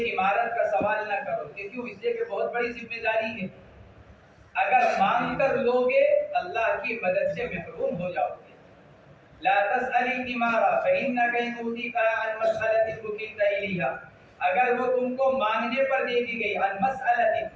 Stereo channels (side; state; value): both; identical; correlation 1.00